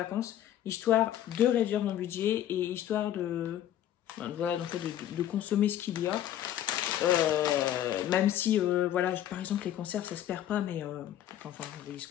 histoire de réduire mon budget et histoire de... Voilà, donc de consommer ce qu'il y a. Même si, voilà, par exemple, les conserves, ça se perd pas, mais... enfin, vous voyez ce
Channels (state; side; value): quieter; right; 11.7 dB